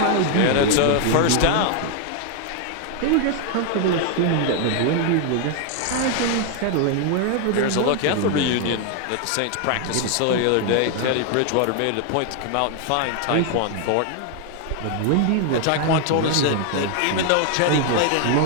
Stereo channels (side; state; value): both; different; correlation 0.00